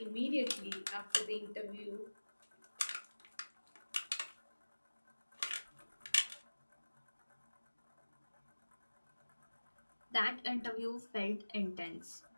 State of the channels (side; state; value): both; inverted; correlation -1.00